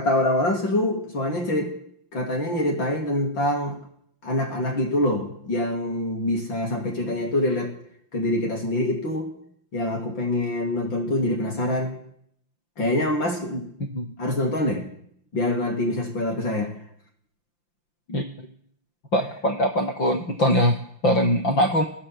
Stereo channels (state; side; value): late; right; 5.8 ms